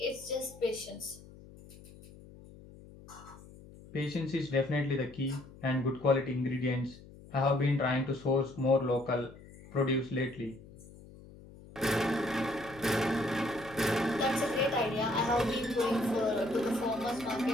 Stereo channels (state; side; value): noise; left; hum, 19 dB below the sound